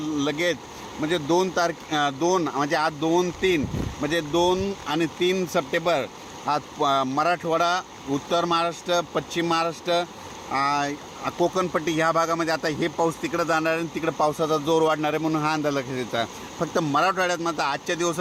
लगेच म्हणजे 2 म्हणजे आज 2-3 म्हणजे 2 आणि 3 सप्टेंबर आज मराठवाडा, उत्तर महाराष्ट्र, पश्चिम महाराष्ट्र, कोकणपट्टी ह्या भागामध्ये आता हे पाऊस तिकडं जाणार आहे आणि तिकडं पावसाचा जोर वाढणार आहे म्हणून हा अंदाज लक्षात येतात. फक्त मराठवाड्यात मात्र आजच्या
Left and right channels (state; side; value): identical; both; correlation 1.00